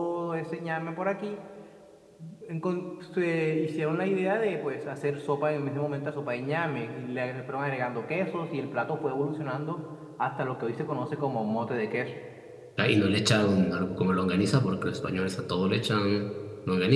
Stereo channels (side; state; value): both; identical; correlation 1.00